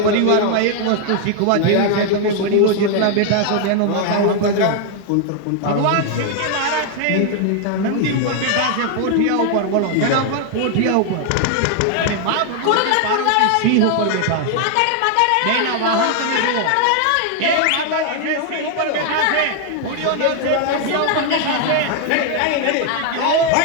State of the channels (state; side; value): different; both; correlation 0.00